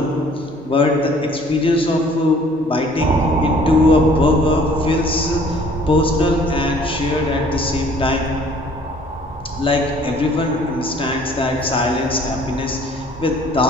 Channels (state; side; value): normal; both; correlation 0.56